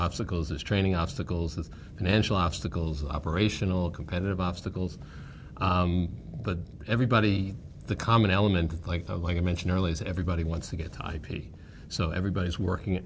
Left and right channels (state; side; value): identical; both; correlation 1.00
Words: there's training obstacles, there's financial obstacles, operational, competitive obstacles. But everybody, the common element, like I mentioned earlier, is everybody wants to get to IP. So everybody's working,